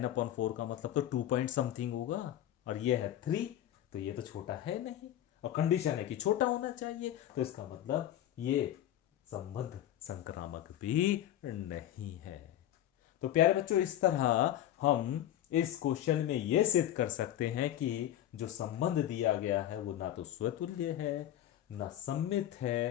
का मतलब तो 2 पॉइंट समथिंग होगा, और ये है 3, तो ये तो छोटा है नहीं, और कंडीशन है कि छोटा होना चाहिए, तो इसका मतलब ये संबंध संक्रामक भी नहीं है। तो प्यारे बच्चों, इस तरह हम इस क्वेश्चन में यह सिद्ध कर सकते हैं कि जो संबंध दिया गया है वो ना तो स्वतुल्य है, ना सम्मित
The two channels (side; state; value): right; quieter; 12.1 dB